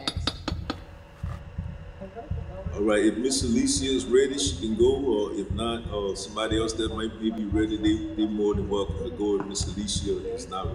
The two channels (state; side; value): identical; both; correlation 1.00